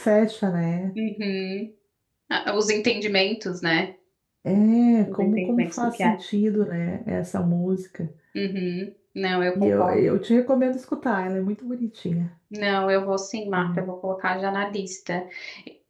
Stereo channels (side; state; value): both; identical; correlation 1.00